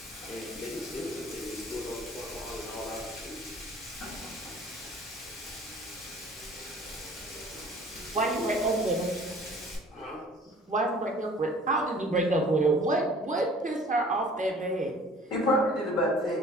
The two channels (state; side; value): normal; both; correlation 0.50